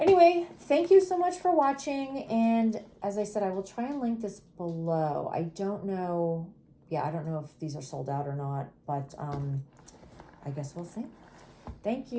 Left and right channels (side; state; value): both; identical; correlation 1.00